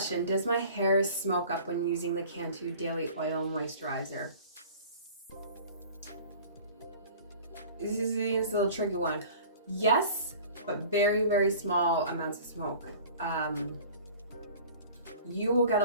does my hair smoke up when using the Cantu Daily Oil Moisturizer? This is a little tricky one. Yes, but very, very small amounts of smoke. You will get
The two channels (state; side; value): inverted; both; correlation -0.44